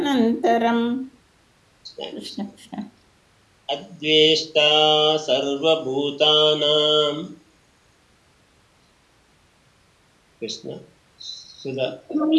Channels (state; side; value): identical; both; correlation 1.00